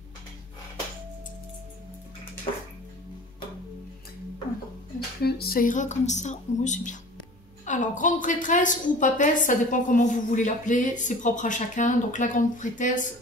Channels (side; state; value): both; normal; correlation 0.43